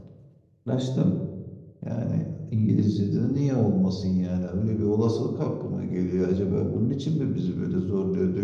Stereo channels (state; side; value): identical; both; correlation 1.00